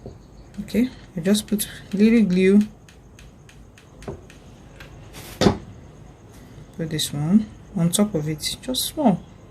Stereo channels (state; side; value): identical; both; correlation 1.00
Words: Okay, I just put little glue. Put this one on top of it, just small.